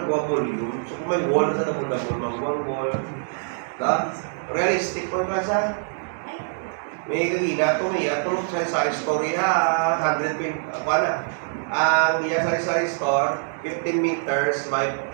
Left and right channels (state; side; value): silent; left; digital silence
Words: volume? So kung may wall sa damol-damol, magbuha wall. Realistic po ka sa? May gagina ito, may ito, sa story ha, 120, wala. Ang iya sari-sari store, 15 meters by